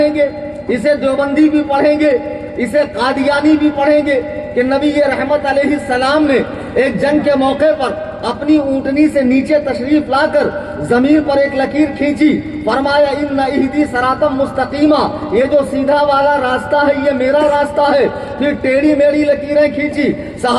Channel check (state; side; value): identical; both; correlation 1.00